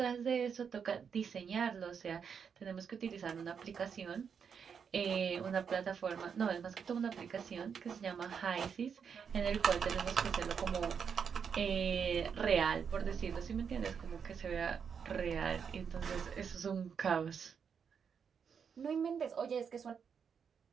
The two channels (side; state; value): left; quieter; 6.8 dB